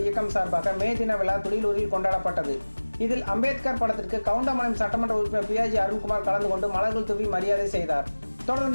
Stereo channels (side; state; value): both; inverted; correlation -1.00